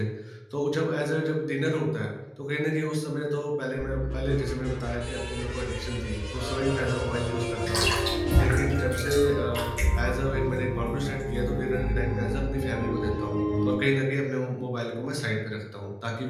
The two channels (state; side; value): identical; both; correlation 1.00